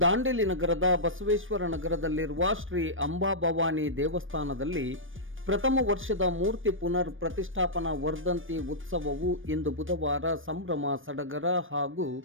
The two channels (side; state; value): left; late; 0.58 ms